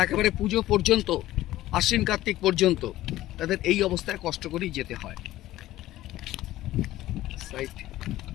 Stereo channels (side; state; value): right; quieter; 15.3 dB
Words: একেবারে পুজো পর্যন্ত, আশ্বিন কার্তিক পর্যন্ত তাদের এই অবস্থায় কষ্ট করেই যেতে হয়।